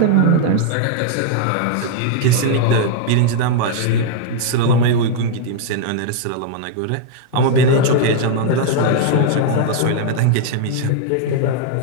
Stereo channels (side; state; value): both; different; correlation -0.01